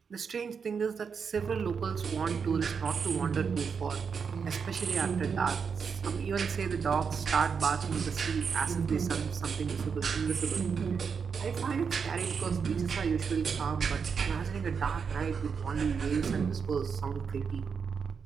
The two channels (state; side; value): quieter; left; 6.1 dB